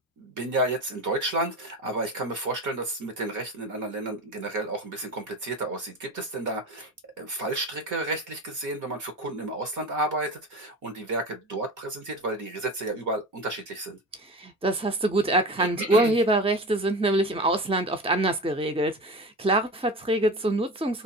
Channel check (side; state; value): both; normal; correlation 0.29